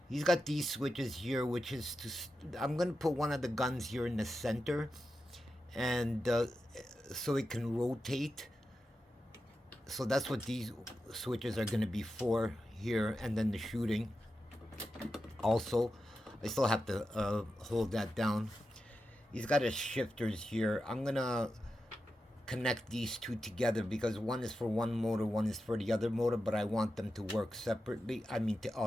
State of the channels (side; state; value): both; normal; correlation 0.90